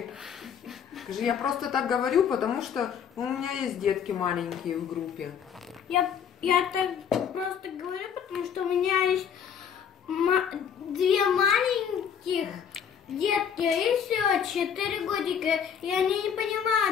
Скажи, я просто так говорю, потому что у меня есть детки маленькие в группе. Я так просто говорю, потому что у меня есть две маленьких детки, и все, 4 годика, и они не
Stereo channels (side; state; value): right; quieter; 7.8 dB